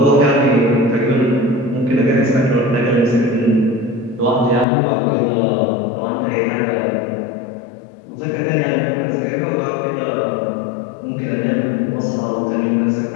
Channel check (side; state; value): right; drops out; at 4.7 s